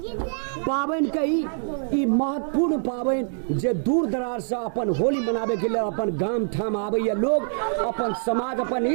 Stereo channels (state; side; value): silent; left; digital silence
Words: पावन कही ई महत्वपूर्ण पावन जे दूर दराज से अपन होली मनावे के लिए अपन गाम ठाम आवे लोग अपन समाज अपन